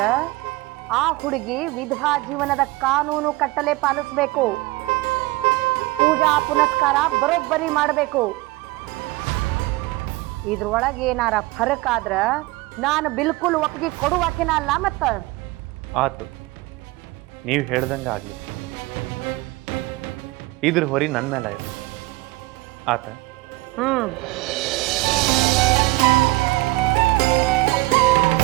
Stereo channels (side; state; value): left; quieter; 21.0 dB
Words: ಆ ಹುಡುಗಿ ವಿಧವಾ ಜೀವನದ ಕಾನೂನು ಕಟ್ಟಲೆ ಪಾಲಿಸ್ಬೇಕು. ಪೂಜಾ ಪುನಸ್ಕಾರ ಬರೋಬ್ಬರಿ ಮಾಡಬೇಕು. ಇದ್ರೊಳಗೆ ಏನಾರ ಫರಕ್ ಆದ್ರ ನಾನು ಬಿಲ್ಕುಲ್ ಒಪ್ಪಿಗೆ ಕೊಡುವಾಕಿನ ಅಲ್ಲ. ಮತ್ತ ಆತು, ನೀವು ಹೇಳ್ದಂಗೆ ಆಗಲಿ. ಇದ್ರ ಹೊರಿ ನನ್ನ ಮೇಲೆ ಇರಲಿ. ಆತ.